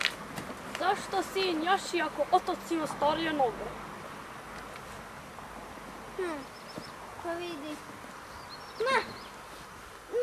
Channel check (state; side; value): identical; both; correlation 1.00